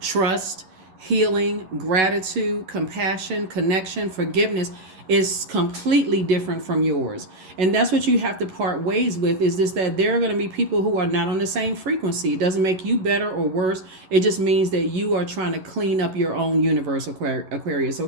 healing, gratitude, compassion, connection, forgiveness is completely different from yours. And that's what you have to part ways with, is this, that there are going to be people who are not on the same frequency. It doesn't make you better or worse. It just means that you are trying to clean up your own universe, Aquarius,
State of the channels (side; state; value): left; late; 11 ms